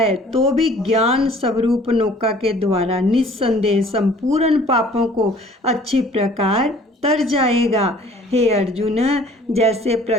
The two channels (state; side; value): normal; both; correlation 0.53